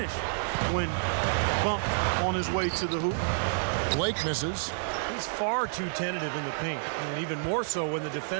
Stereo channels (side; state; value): left; silent; digital silence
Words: when bumped on his way to the hoop. Blake misses. He's far too tentative in the paint, and even more so when the